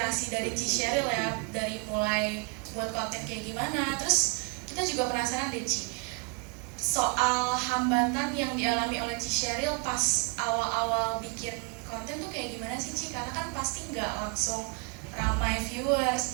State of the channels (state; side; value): quieter; left; 31.5 dB